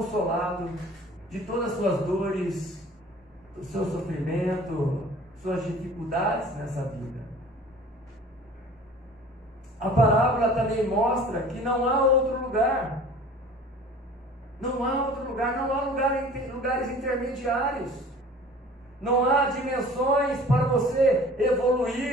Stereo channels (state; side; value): normal; both; correlation 0.46